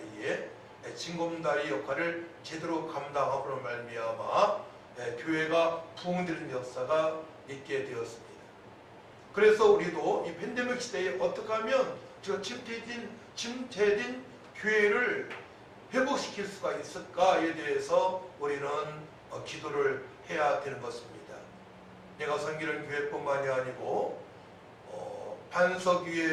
징검다리 역할을 제대로 감당함으로 말미암아 교회가 부흥되는 역사가 있게 되었습니다. 그래서 우리도 이 팬데믹 시대에 어떻게 하면 저 침체된 교회를 회복시킬 수가 있을까에 대해서 우리는 기도를 해야 되는 것입니다. 내가 섬기는 교회뿐만이 아니고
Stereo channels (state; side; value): identical; both; correlation 1.00